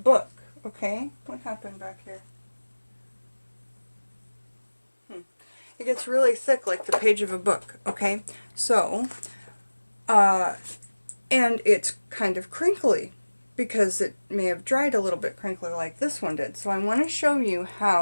okay? What happened back here? It gets really thick like the page of a book, okay? So, and it's kind of crinkly because it may have dried a little bit crinkly like this one did. So I want to show you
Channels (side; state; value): both; inverted; correlation -1.00